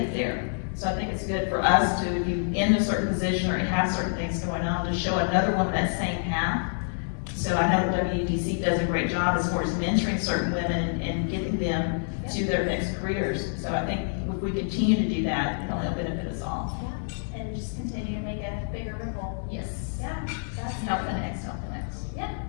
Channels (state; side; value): silent; right; digital silence